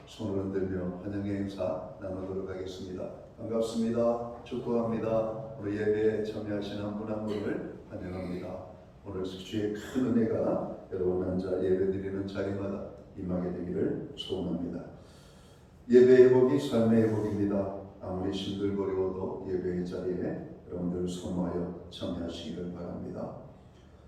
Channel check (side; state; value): both; identical; correlation 1.00